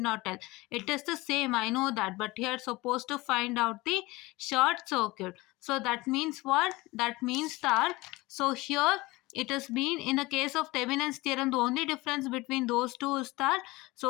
tell. It is the same, I know that, but here supposed to find out the short circuit. So that means what? That means that, so here it has been in the case of Thevenin's theorem, the only difference between those two is that,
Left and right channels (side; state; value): right; quieter; 21.5 dB